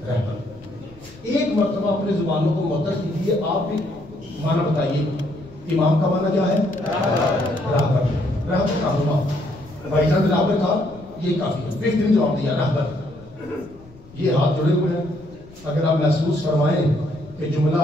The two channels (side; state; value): left; noise; rumble, 23 dB below the sound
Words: एक मर्तबा अपने जुबानों को मुअत्तल कीजिए, आप भी माना बताइए। इमाम का माना क्या है? राहबर। राहबर का हुआ भाईजान राहबर था, ये काफी है। बेहतरीन जवाब दिया राहबर। ये हाथ जुड़े हुए हैं, अगर आप महसूस फरमाएं कि जुमला